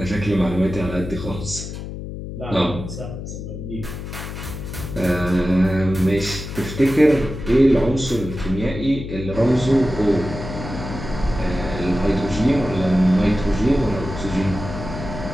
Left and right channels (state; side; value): noise; left; hum, 8 dB below the sound